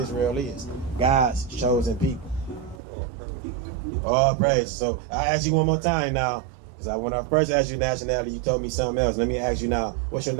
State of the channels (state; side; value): drops out; left; at 2.8 s